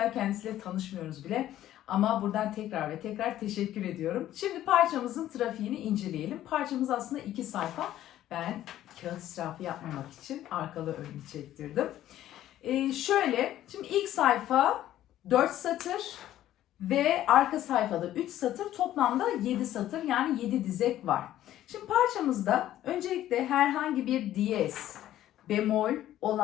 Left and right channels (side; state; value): right; quieter; 12.9 dB